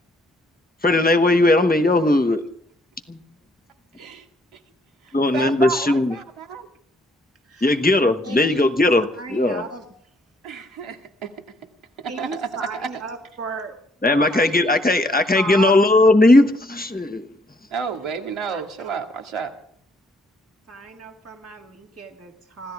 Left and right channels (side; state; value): both; normal; correlation 0.67